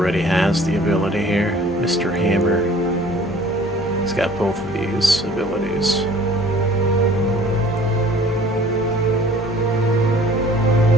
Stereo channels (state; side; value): normal; both; correlation 0.51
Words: has the ability here. Mr. Hammer. He's got both of these abilities.